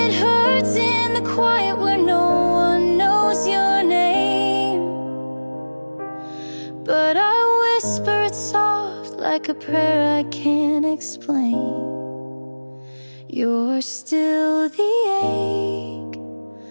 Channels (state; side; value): inverted; both; correlation -1.00